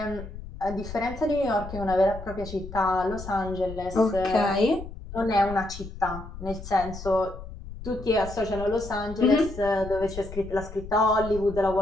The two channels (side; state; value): left; noise; rumble, 12 dB below the sound